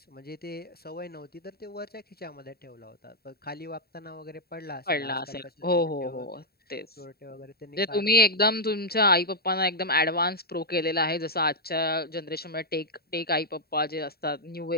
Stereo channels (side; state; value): right; late; 0.45 ms